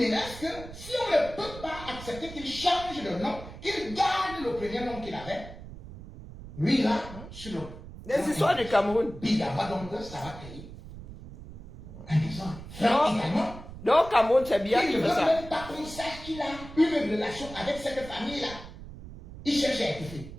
que si on ne peut pas accepter qu'il change de nom, qu'il garde le premier nom qu'il avait, lui là, sur le... Des histoires du Cameroun. Bigama, donc ça va créer un exemple. Franck également. Donc Cameroun, c'est bien Il qu'il ne fait veut ça. même pas qu'on sache qu'il a une relation avec cette famille-là. Il cherche à étouffer.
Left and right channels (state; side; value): noise; right; rumble, 14 dB below the sound